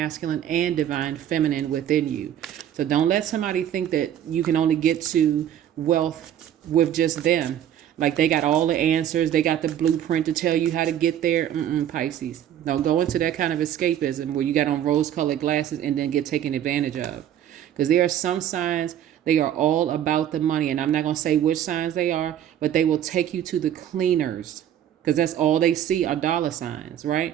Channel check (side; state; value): left; quieter; 10.6 dB